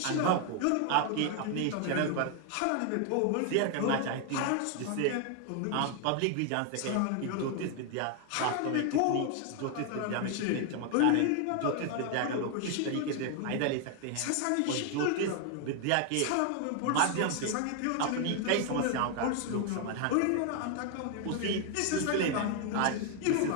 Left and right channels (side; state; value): both; different; correlation 0.00